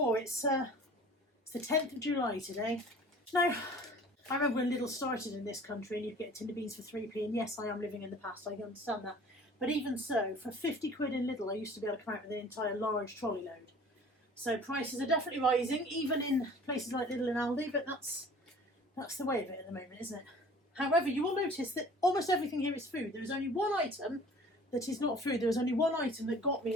It's the 10th of July today. Now, I remember when Lidl started in this country and you'd get tin of beans for 3p, and yes, I am living in the past, I understand that. But even so, for 50 quid in Lidl, I used to be able to come out with an entire large trolley load. So prices are definitely rising, even in places like Lidl and Aldi, but that's the way of it at the moment, isn't it? However, you will notice that almost everything here is food. There is only one item that is not food. There was only one item that got me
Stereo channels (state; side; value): normal; both; correlation 0.47